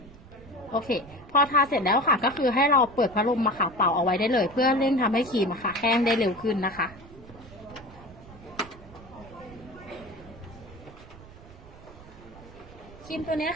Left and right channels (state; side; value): noise; right; rumble, 20 dB below the sound